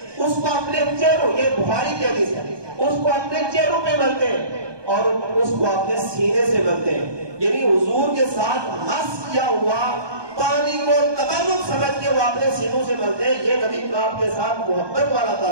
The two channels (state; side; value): late; left; 1.2 ms